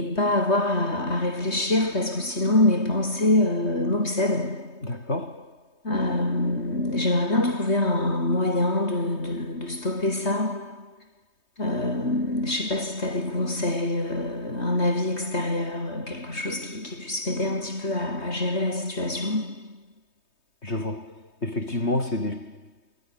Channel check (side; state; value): right; late; 3.2 ms